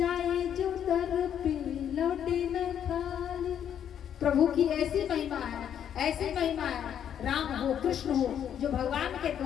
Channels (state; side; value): quieter; right; 9.2 dB